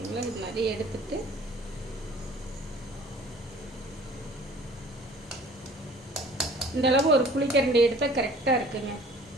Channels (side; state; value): both; normal; correlation 0.50